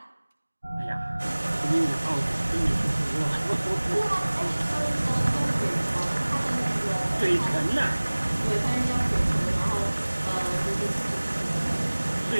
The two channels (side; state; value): both; inverted; correlation -1.00